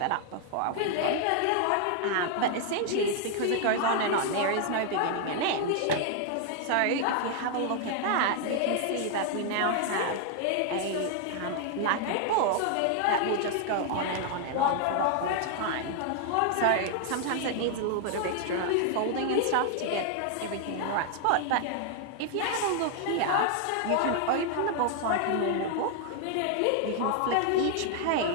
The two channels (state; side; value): different; both; correlation 0.00